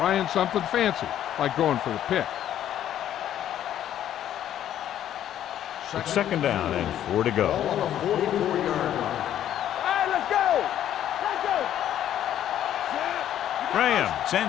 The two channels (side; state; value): right; quieter; 11.1 dB